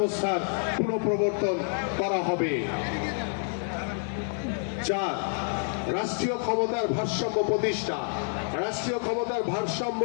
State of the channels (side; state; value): right; silent; digital silence